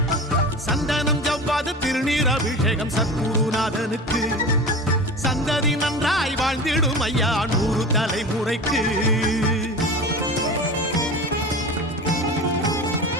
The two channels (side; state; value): both; normal; correlation 0.32